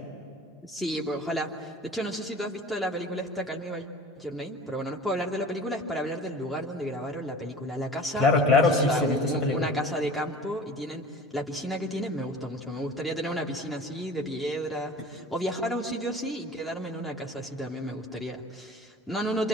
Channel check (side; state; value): both; normal; correlation 0.41